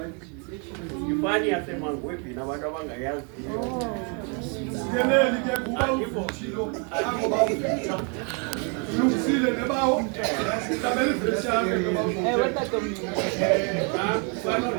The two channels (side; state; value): left; quieter; 36.7 dB